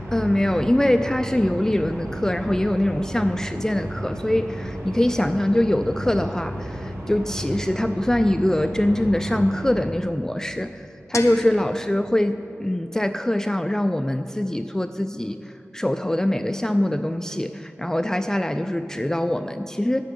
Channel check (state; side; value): normal; both; correlation 0.98